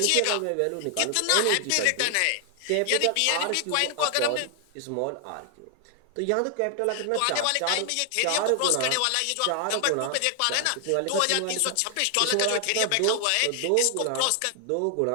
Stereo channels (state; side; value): different; both; correlation 0.00